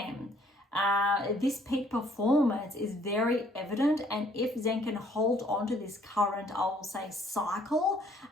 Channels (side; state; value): both; normal; correlation 0.62